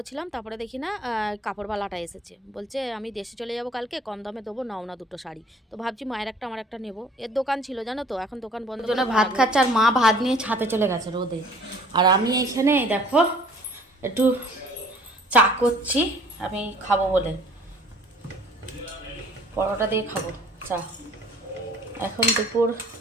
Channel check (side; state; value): both; normal; correlation 0.53